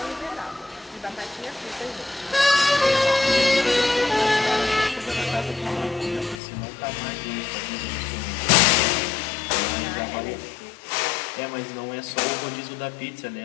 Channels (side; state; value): right; drops out; at 6.4 s